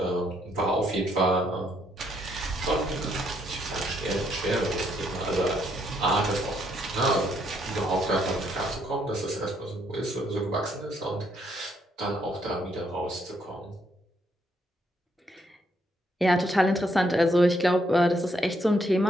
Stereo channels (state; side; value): normal; both; correlation 0.73